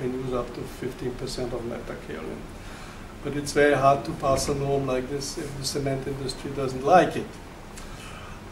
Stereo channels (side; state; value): both; identical; correlation 1.00